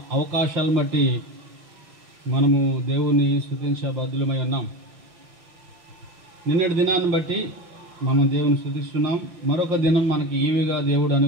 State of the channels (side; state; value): left; late; 5.8 ms